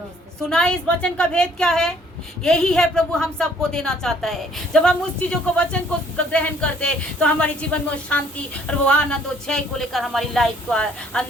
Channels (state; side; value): normal; both; correlation 0.61